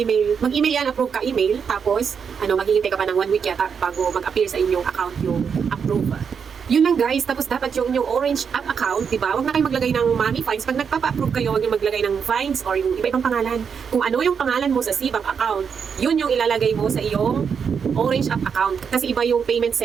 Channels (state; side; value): quieter; left; 6.6 dB